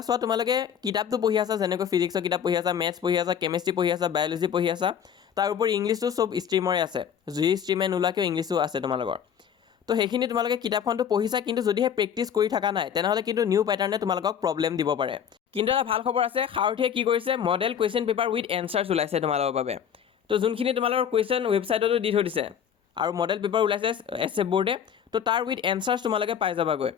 চোৱা, তোমালোকে কিতাপটো পঢ়ি আছা, যেনেকৈ ফিজিক্সৰ কিতাপ পঢ়ি আছা, মেথছ পঢ়ি আছা, কেমেষ্ট্ৰি পঢ়ি আছা, বায়'লজি পঢ়ি আছা, তাৰ উপৰি ইংলিছটো চব ষ্ট্ৰীমৰে আছে, যি ষ্ট্ৰীমে নোলোৱাকৈ ইংলিছো আছে তোমালোকৰ। তো সেইখিনি তোমালোকে কিতাপখনটো পঢ়িছা, কিন্তু যদিহে প্ৰেক্টিছ কৰি থকা নাই, তেনেহ'লে কিন্তু নিউ পেটাৰ্ণে তোমালোকক প্ৰব্লেম দিব পাৰে। কিন্তু এটা ভাল খবৰ আছে, সাৰথিয়ে কি কৰিছে, model question paper with answers ওলাইছে তোমালোকৰ বাবে। তো যোনখিনি তোমালোকৰ কুৱেশ্যন ৱেবছাইটতো দি থৈ দিছে, আৰু মডেল পেপাৰ ওলাইছে SF বৰ্ডে, তো তাৰ উইথ এনচাৰ্ছ তোমালোকে পাই যাবাগৈ।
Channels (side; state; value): right; quieter; 8.4 dB